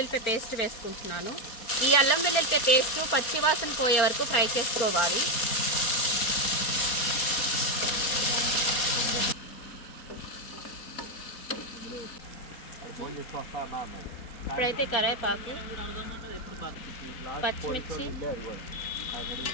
పేస్ట్ వేసుకుంటున్నాను. ఈ అల్లం వెల్లుల్లిపాయ పేస్ట్ పచ్చివాసన పోయే వరకు ఫ్రై చేసుకోవాలి. ఇప్పుడైతే కరివేపాకు, పచ్చిమిర్చి,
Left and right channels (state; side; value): late; right; 4.3 ms